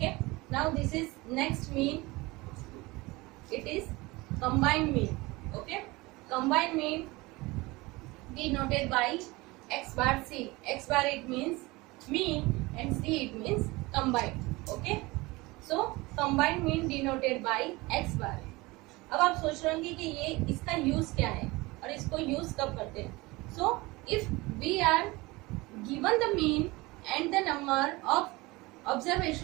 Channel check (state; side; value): quieter; left; 22.3 dB